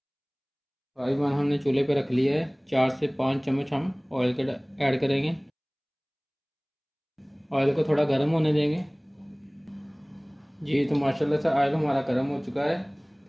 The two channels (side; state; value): both; identical; correlation 1.00